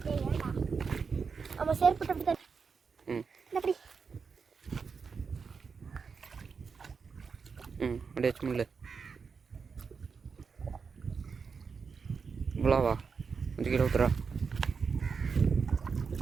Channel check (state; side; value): quieter; left; 5.5 dB